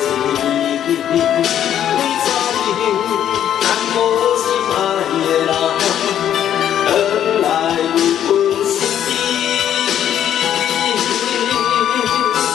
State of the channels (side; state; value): right; quieter; 10.3 dB